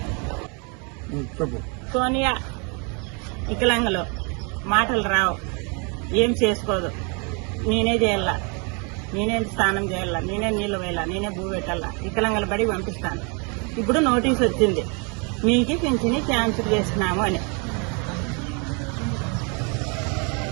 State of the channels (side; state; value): left; quieter; 34.1 dB